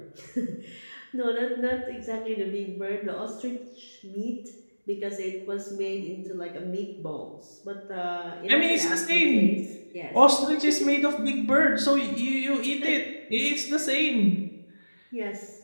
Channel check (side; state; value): both; inverted; correlation -1.00